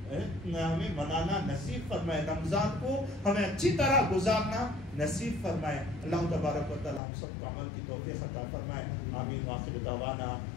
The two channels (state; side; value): drops out; right; at 7.0 s